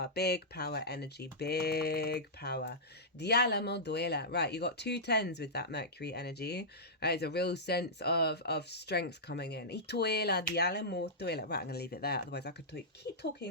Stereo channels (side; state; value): both; normal; correlation -0.12